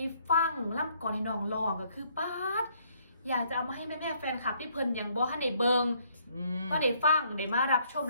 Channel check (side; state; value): both; inverted; correlation -0.66